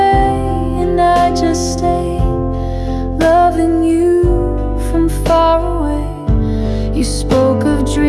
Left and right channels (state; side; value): identical; both; correlation 1.00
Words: and I just stayed, loving you from far away. You spoke of